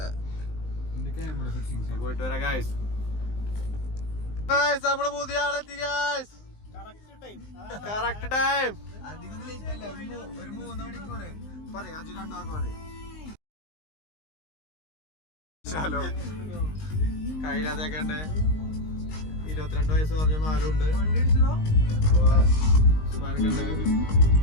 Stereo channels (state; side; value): late; right; 19 ms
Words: പോയിട്ട് വരാം ഗായ്സ്. നമ്മള് പുതിയ ആളെത്തി ഗായ്സ്. Correct time. ഒരു 3 മണിക്കൂർ കയ്യിലാത്തേക്കണ്ട്. 22 വയസ്സ് പറഞ്ഞ മാലുണ്ട്. അപ്പൊ ഉസ്മാനക്കുണ്ട്.